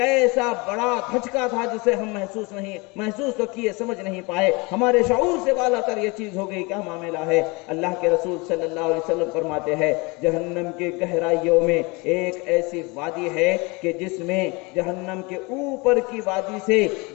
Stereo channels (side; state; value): right; quieter; 26.9 dB